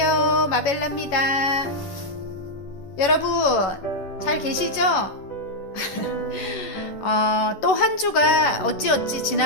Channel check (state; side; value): late; right; 11 ms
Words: 마벨라입니다. 여러분 잘 계시죠? 또 한 주가 어찌어찌